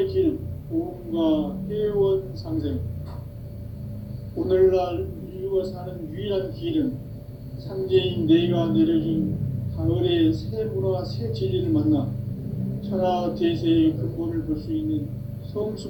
길, 보험과 회원 상생. 오늘날 인류가 사는 유일한 길은 상제인 내가 내려준 가을의 새 문화 새 진리를 만나 천하 대세의 근본을 볼 수 있는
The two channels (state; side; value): identical; both; correlation 1.00